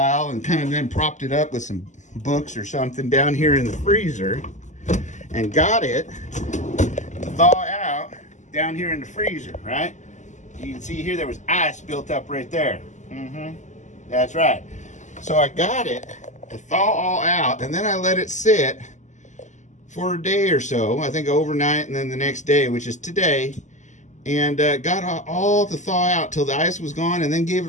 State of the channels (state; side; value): late; right; 0.35 ms